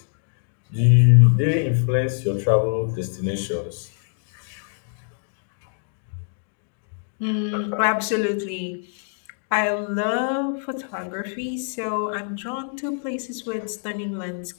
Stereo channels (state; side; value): silent; right; digital silence